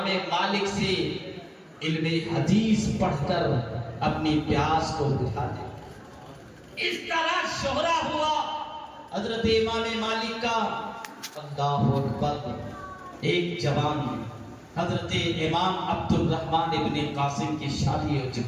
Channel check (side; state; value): both; identical; correlation 1.00